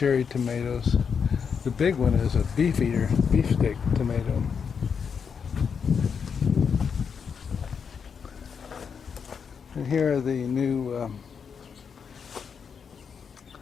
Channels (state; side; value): quieter; right; 6.5 dB